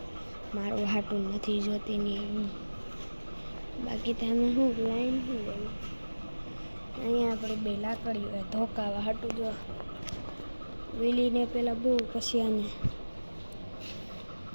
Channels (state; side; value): inverted; both; correlation -1.00